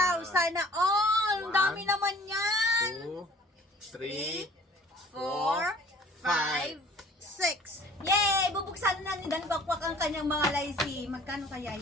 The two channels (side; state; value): both; normal; correlation 0.51